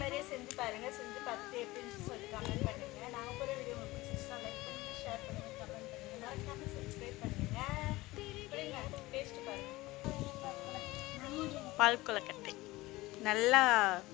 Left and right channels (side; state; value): right; quieter; 19.7 dB